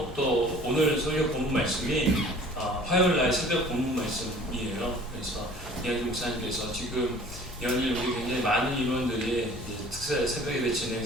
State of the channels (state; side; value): normal; both; correlation 0.49